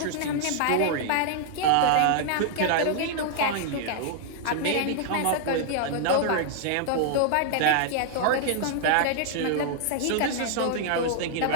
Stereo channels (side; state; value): both; different; correlation 0.00